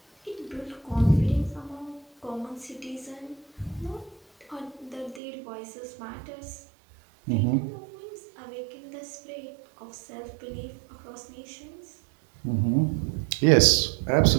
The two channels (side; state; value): left; drops out; at 5.2 s